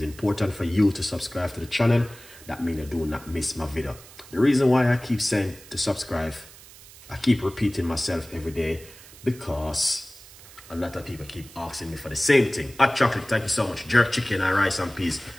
important for you to subscribe to the channel. That means you do not miss my video. The reason why I keep saying to subscribe, I keep repeating myself every day, because a lot of people keep asking me for the same thing. Hot chocolate, thank you so much. Jerk chicken and rice and peas.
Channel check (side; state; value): right; noise; hiss, 20 dB below the sound